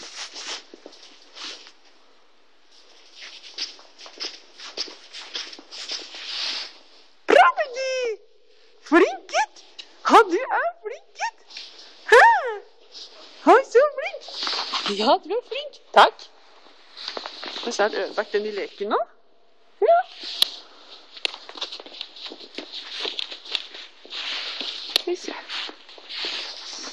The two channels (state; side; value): identical; both; correlation 1.00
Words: Ja, du var flink. Takk. Og så har jeg ødelagt den i leken nå. Ja. Skal vi se.